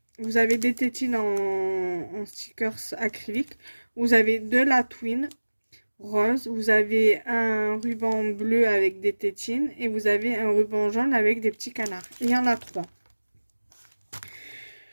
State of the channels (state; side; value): inverted; both; correlation -1.00